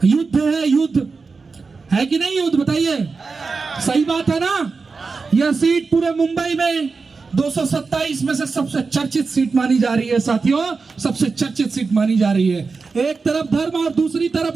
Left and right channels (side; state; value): left; quieter; 4.5 dB